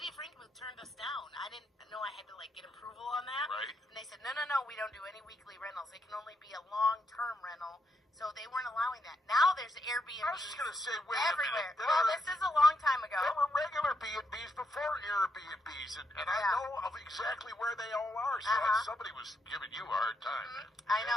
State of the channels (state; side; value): normal; both; correlation 0.80